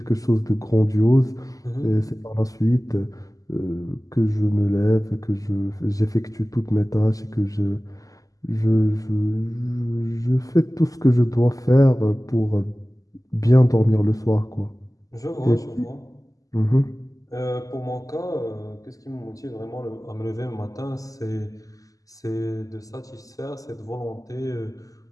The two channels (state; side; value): late; right; 0.17 ms